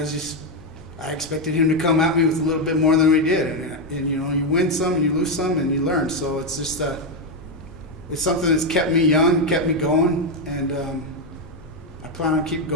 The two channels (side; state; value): left; noise; hum, 25 dB below the sound